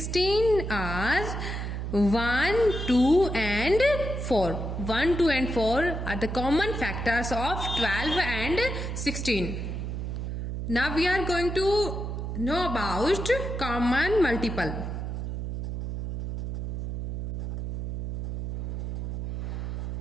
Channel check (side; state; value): right; noise; hum, 4 dB below the sound